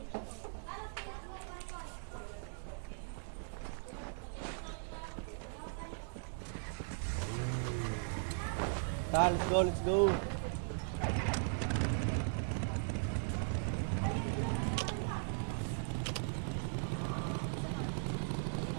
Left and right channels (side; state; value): left; silent; 52 dB below the other